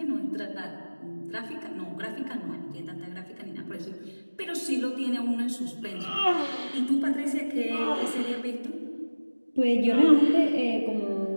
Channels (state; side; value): inverted; both; correlation -1.00